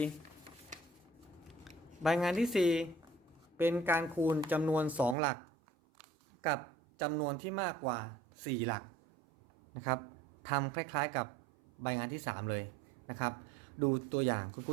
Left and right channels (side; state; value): left; drops out; at 5.2 s